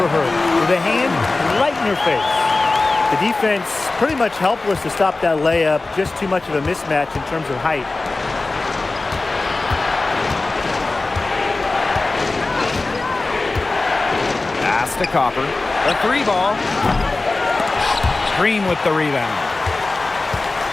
her with a hand right in her face. The defense pretty much helpless to stop that layup. Just too much of a mismatch in terms of height. Pass to Copper. The three ball. Green with the rebound.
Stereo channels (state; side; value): quieter; right; 3.3 dB